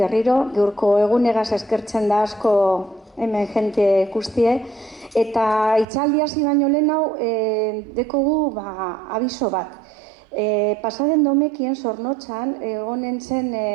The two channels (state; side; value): drops out; left; at 5.9 s